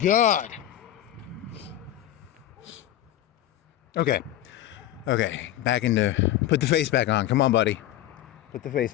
Okay, back put the face back on. Come on, buddy. Put the face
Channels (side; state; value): right; quieter; 12.9 dB